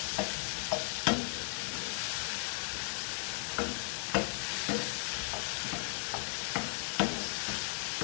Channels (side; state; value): right; silent; digital silence